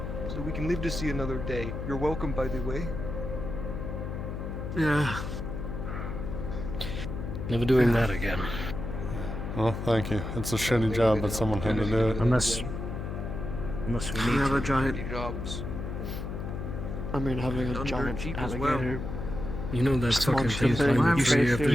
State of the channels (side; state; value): left; noise; hum, 5 dB below the sound